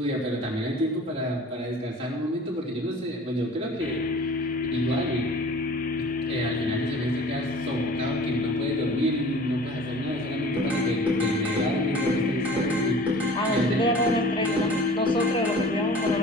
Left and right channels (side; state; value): both; normal; correlation 0.45